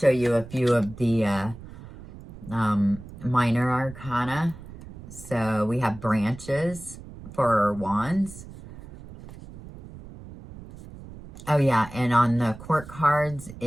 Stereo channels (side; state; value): right; noise; rumble, 16 dB below the sound